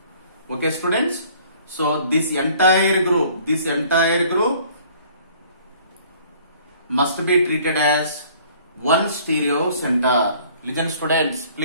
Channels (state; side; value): inverted; both; correlation -0.55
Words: Okay, students. So this entire group must be treated as one stereo center. Listen, students,